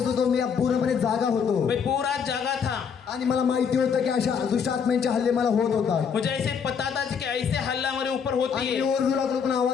होतो, मी पूर्णपणे जागा होतो. मैं पूरा जागा था. आणि मला माहिती होतं की अशा दुष्टात्म्यांचे हल्ले मला होत होतात. मुझे ऐसे पता था कि ऐसे हल्ला मेरे ऊपर होती आणि है. ओरडू लागलो पण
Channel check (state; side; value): quieter; right; 6.7 dB